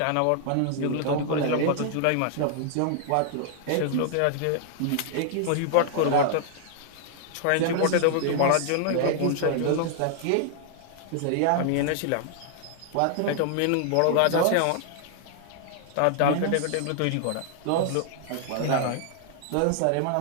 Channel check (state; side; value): different; both; correlation 0.00